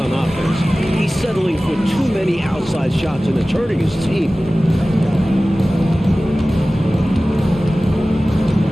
offense. He's settling for too many outside shots and it's hurting his team.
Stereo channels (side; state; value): both; normal; correlation 0.97